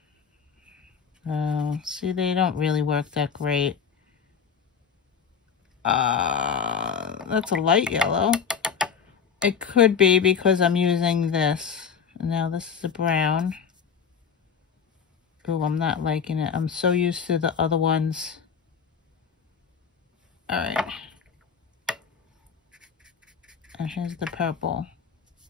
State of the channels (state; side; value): quieter; right; 6.6 dB